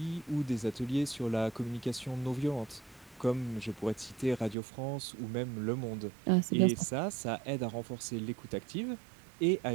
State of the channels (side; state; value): left; drops out; at 4.5 s